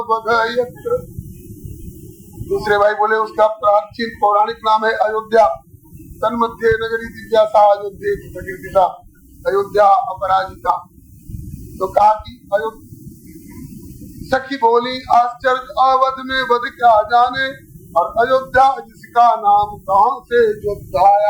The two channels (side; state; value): both; identical; correlation 1.00